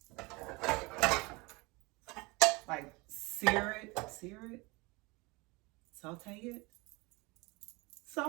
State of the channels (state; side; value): quieter; left; 25.3 dB